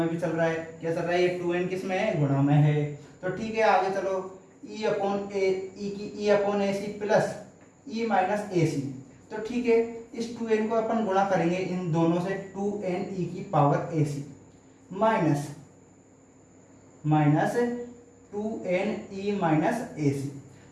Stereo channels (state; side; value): identical; both; correlation 1.00